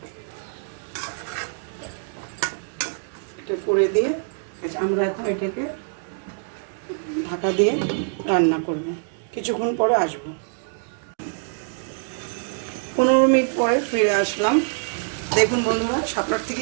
এটা করে দিয়ে আমরা এখন এটাকে ঢাকা দিয়ে রান্না করব। কিছুক্ষণ পরে আসবো। 15 মিনিট পরে ফিরে আসলাম। দেখুন বন্ধুরা, শাপলার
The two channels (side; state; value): left; silent; digital silence